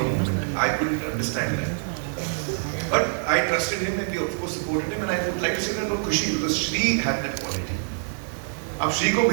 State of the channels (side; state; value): left; silent; digital silence